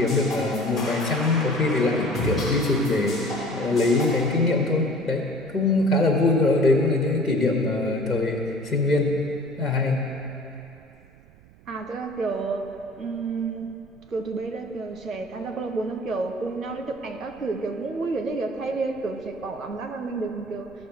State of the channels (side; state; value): right; noise; rumble, 25 dB below the sound